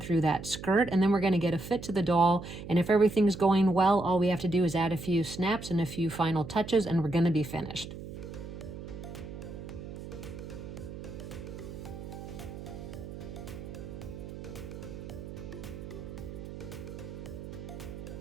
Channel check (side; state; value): right; noise; hum, 10 dB below the sound